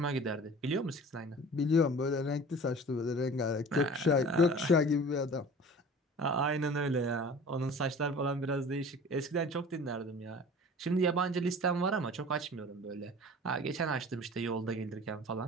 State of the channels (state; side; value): normal; both; correlation 0.42